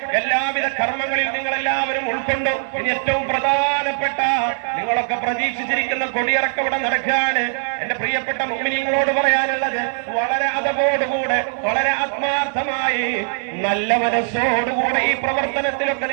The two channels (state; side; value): silent; left; 60 dB below the other